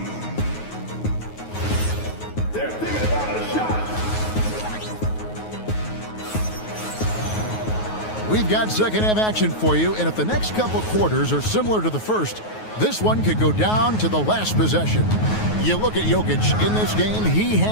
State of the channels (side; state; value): right; late; 9.4 ms